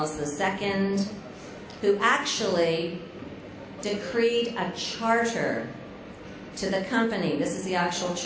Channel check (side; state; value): both; identical; correlation 1.00